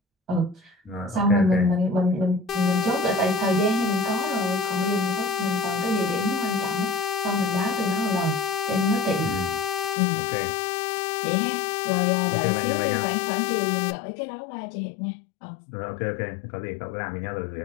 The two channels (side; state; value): right; drops out; at 10.0 s